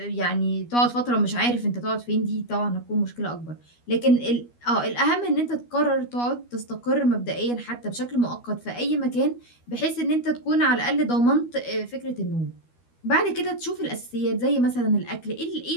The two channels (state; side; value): late; right; 12 ms